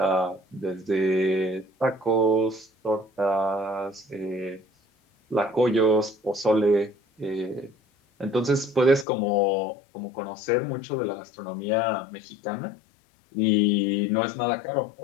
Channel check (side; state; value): right; drops out; at 9.1 s